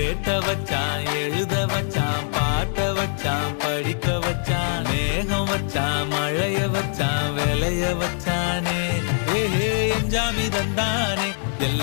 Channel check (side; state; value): right; silent; digital silence